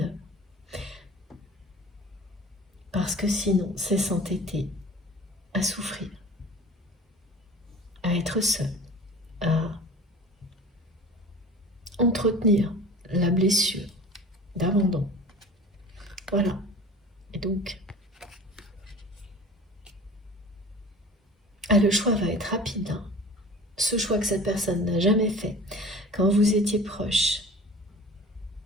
Parce que sinon, c'est s'entêter à souffrir, à être seul, à entretenir la blessure d'abandon. Voilà. Et donc, le choix va être rapide. Ce choix que cette personne n'a jamais fait quand vous étiez proche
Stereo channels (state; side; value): normal; both; correlation 0.41